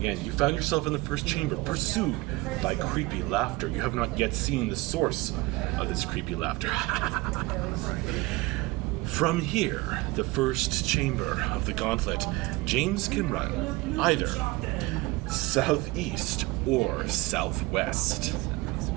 you found yourself in the first chamber, pursued by creepy laughter. You have not yet seen the source of this creepy laughter. From here, the first chamber of the Gauntlet, James can run either southeast or southwest.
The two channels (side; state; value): left; quieter; 21.4 dB